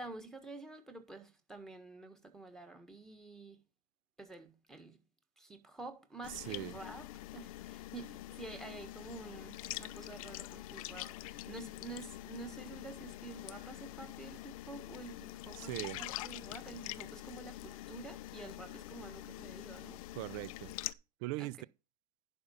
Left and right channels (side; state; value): both; normal; correlation 0.09